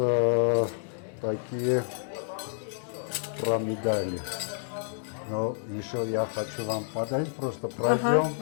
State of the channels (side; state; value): right; silent; digital silence